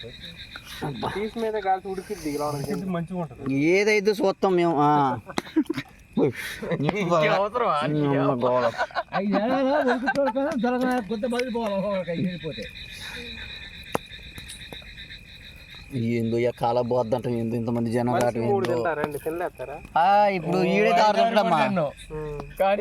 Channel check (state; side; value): identical; both; correlation 1.00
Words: ఏదైతే చూస్తాం మేము. ఏందో కాల పోద్దంట ఇంతమంది జనం ఇప్పుడు ఈడే తారుతాడమ్మా